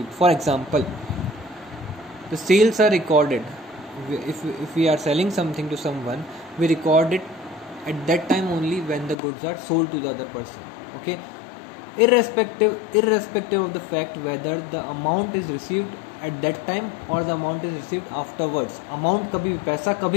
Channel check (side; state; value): right; drops out; at 9.2 s